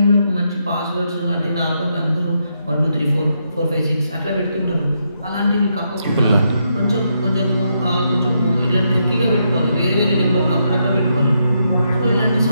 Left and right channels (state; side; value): inverted; both; correlation -0.80